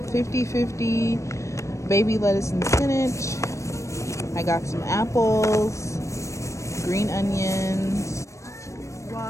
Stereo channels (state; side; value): late; right; 0.15 ms